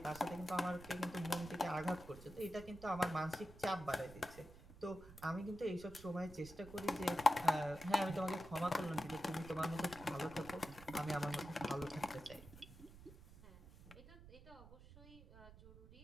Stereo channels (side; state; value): right; noise; rumble, 18 dB below the sound